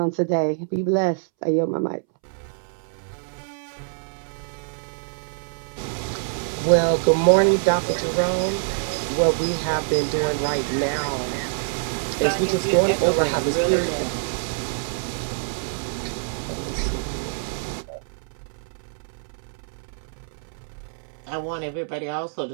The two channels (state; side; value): silent; left; 62 dB below the other